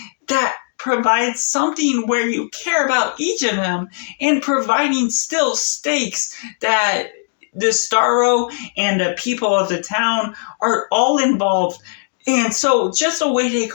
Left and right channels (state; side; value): silent; right; digital silence